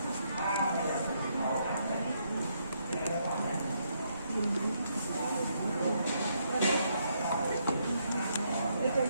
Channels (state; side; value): inverted; both; correlation -0.75